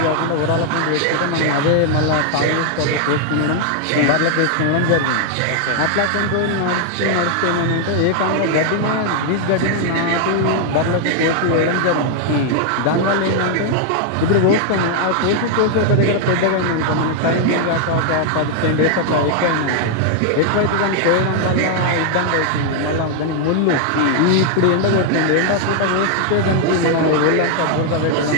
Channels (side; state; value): both; different; correlation 0.00